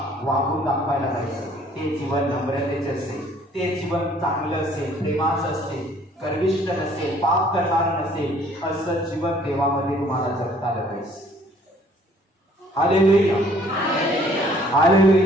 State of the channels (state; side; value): normal; both; correlation 0.58